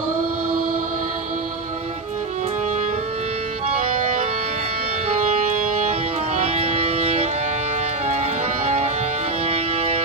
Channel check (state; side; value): quieter; left; 3.3 dB